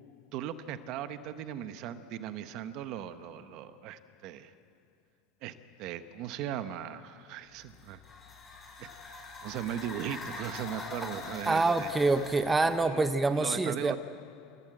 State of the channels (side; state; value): left; quieter; 3.5 dB